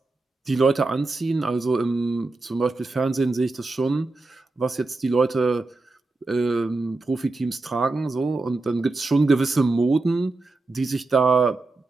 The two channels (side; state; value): left; quieter; 3.3 dB